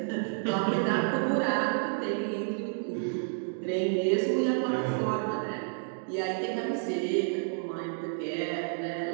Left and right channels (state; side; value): silent; left; 58 dB below the other